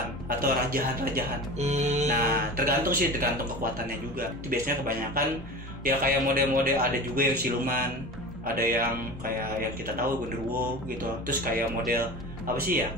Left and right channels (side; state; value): both; normal; correlation 0.33